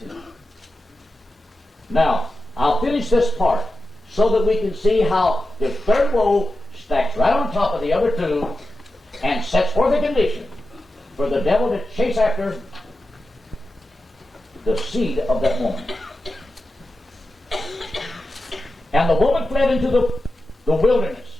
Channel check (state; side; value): normal; both; correlation 0.91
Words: to. Now, I'll finish this part so that we can see how the third woe stacks right on top of the other two and sets forth a condition for the devil to chase after the seed of that woman. And the woman fled into the wilderness,